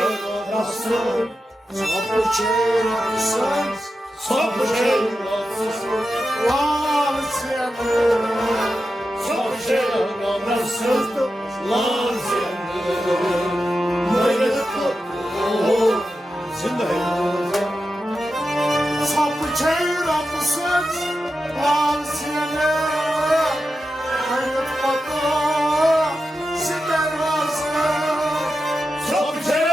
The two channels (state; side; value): normal; both; correlation 0.90